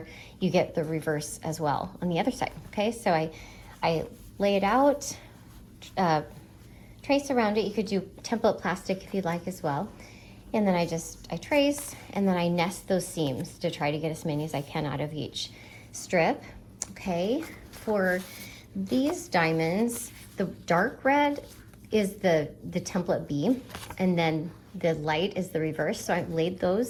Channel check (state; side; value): identical; both; correlation 1.00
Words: you get the reverse as well on the other side. Okay, so I lay it out, trace around it. You could do template plastic if you'd like as well. And then I trace, and then I nest those seams to try to get as many as I can out of each strip. Okay, for these diamonds, the dark red is the template B, and then the light is the reverse. So I laid